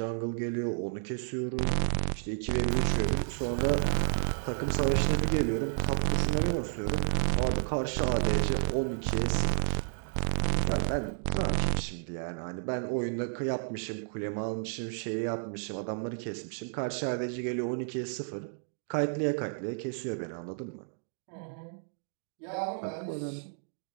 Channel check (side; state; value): left; silent; digital silence